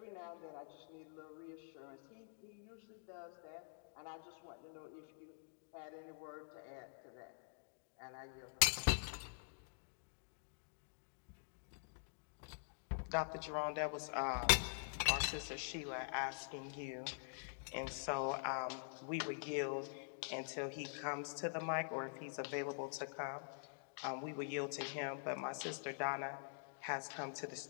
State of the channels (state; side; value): silent; right; digital silence